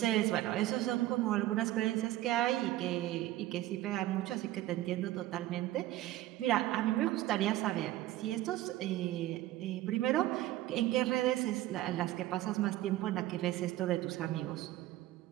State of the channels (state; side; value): quieter; left; 15.4 dB